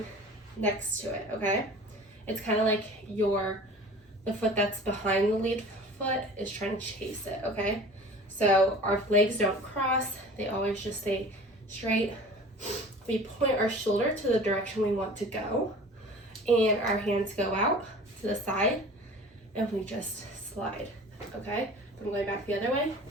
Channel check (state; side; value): normal; both; correlation 0.42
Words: next to it, okay? It's kind of like the foot that's behind the lead foot is trying to chase it, okay? So our legs don't cross, they always just stay straight. We point our shoulder to the direction we want to go, and our hands go out to the side, and we just slide, okay? If I'm going back the other way,